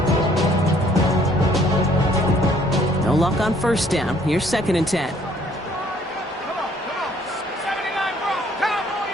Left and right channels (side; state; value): both; normal; correlation 0.62